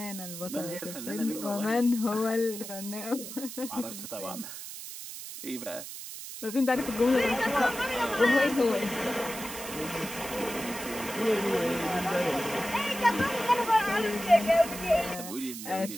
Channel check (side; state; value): right; noise; hiss, 10 dB below the sound